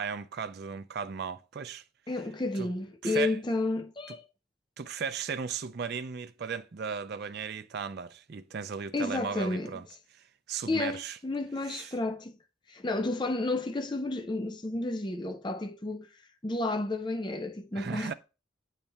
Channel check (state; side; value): normal; both; correlation 0.57